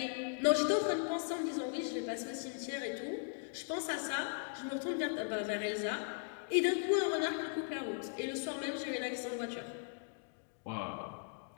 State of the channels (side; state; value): right; silent; digital silence